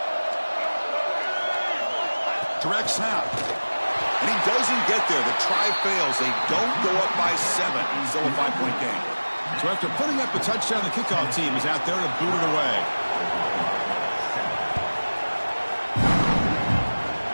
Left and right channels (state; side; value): inverted; both; correlation -1.00